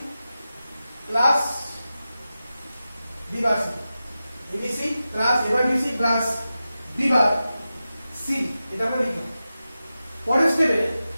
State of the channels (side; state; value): both; inverted; correlation -0.93